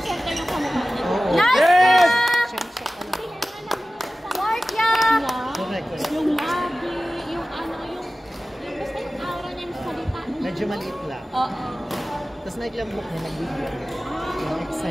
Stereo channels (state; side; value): normal; both; correlation 0.96